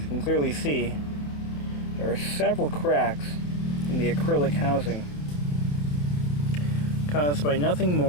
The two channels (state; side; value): late; right; 27 ms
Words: you can clearly see, there are several cracks in the acrylic housing caused by nothing